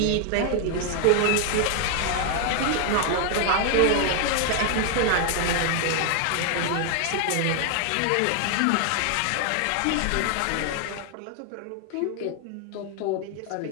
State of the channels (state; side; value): different; both; correlation 0.00